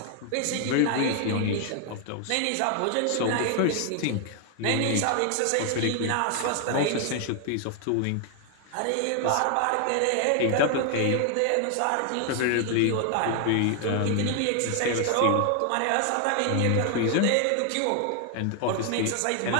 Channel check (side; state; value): both; different; correlation 0.00